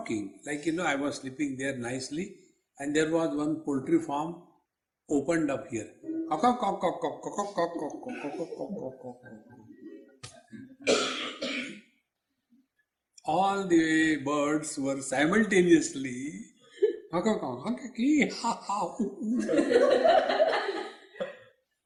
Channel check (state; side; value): identical; both; correlation 1.00